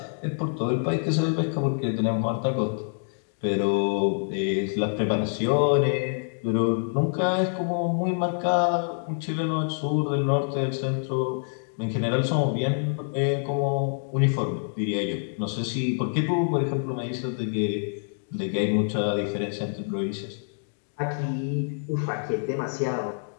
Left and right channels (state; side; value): silent; right; digital silence